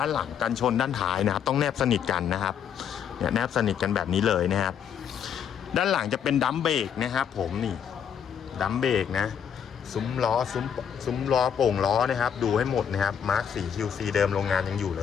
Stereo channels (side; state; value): right; quieter; 8.2 dB